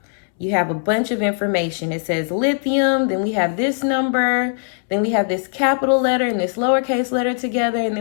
you have a bunch of information. It says lithium, then we have this number, then we have this capital letter and this lowercase letter together, and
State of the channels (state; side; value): silent; right; 66 dB below the other